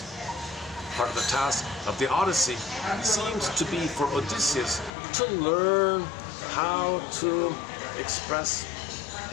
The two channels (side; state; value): right; drops out; at 4.9 s